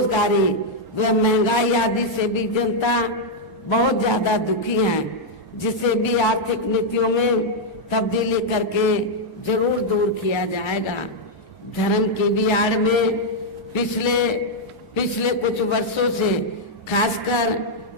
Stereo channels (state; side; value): normal; both; correlation -0.02